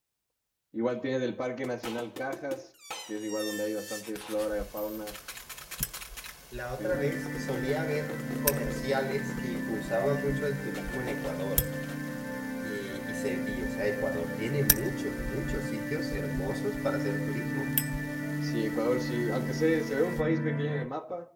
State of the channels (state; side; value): identical; both; correlation 1.00